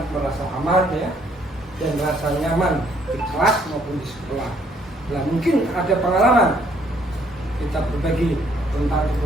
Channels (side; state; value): both; normal; correlation 0.66